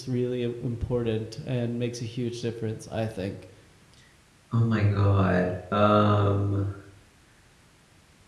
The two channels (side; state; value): both; identical; correlation 1.00